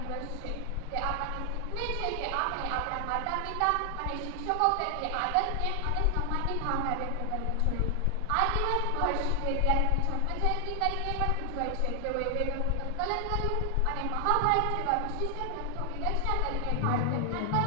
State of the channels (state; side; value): different; both; correlation 0.00